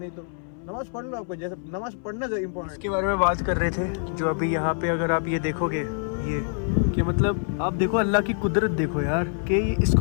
तो नमाज पढ़ लो, आपको जैसे नमाज पढ़ना चाहिए इम्पोर्टेंट। इसके बारे में बात कर रहे थे जो अभी यहाँ पे अगर आप ये देखोगे, ये कि मतलब आप देखो अल्लाह की कुदरत देखो यार, कि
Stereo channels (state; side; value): silent; right; 61 dB below the other